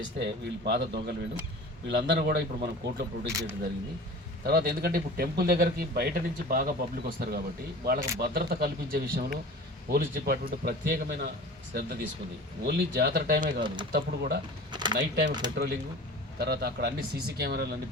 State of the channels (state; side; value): normal; both; correlation 0.39